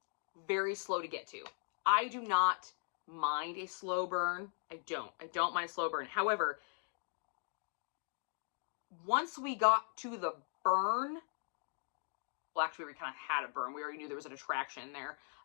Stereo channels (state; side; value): silent; right; 52 dB below the other